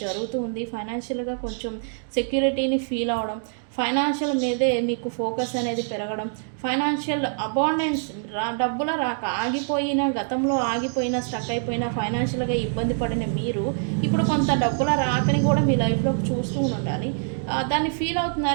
జరుగుతూ ఉంది. ఫైనాన్షియల్గా కొంచెం సెక్యూరిటీని ఫీల్ అవడం, ఫైనాన్షియల్ మీదే మీకు ఫోకస్ అనేది పెరగడం, ఫైనాన్షియల్ అబాండెన్స్, డబ్బుల రాక గతంలో ఆగిపోయిన స్టక్ అయిపోయిన ఫైనాన్షియల్గా ఇబ్బంది పడిన మీరు ఇప్పుడు కొంత డబ్బుల రాకని కూడా మీ లైఫ్లోకి చూస్తూ ఉండాలి, దాన్ని ఫీల్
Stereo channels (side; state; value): left; silent; 62 dB below the other